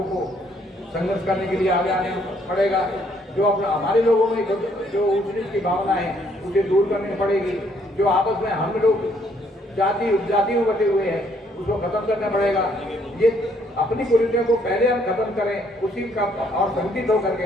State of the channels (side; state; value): both; normal; correlation 0.67